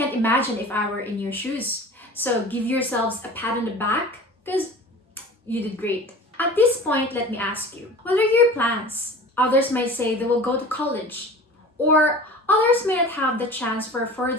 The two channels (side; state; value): both; normal; correlation 0.39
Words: imagine if I were in your shoes. So give yourselves a pat on the back, because you did great. At this point, let me ask you, what are your plans? Others might say they will go to college, or others may not have the chance for